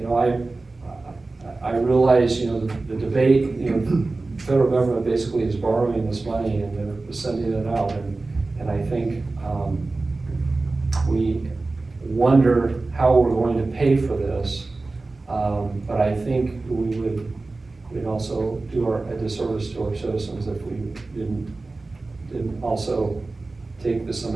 I realize, the debate, the federal government basically is borrowing this money and they're sending it out, and I think we wonder how we're going to pay for this, but I think we'd also do a disservice to our citizens if we didn't also take this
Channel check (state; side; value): quieter; left; 3.4 dB